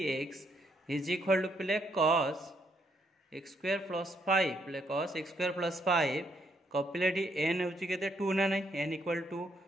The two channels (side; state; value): both; normal; correlation 0.74